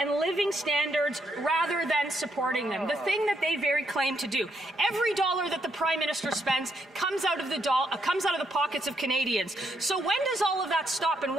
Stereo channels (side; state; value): both; normal; correlation 0.76